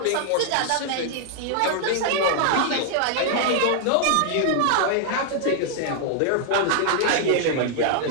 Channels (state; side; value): different; both; correlation -0.01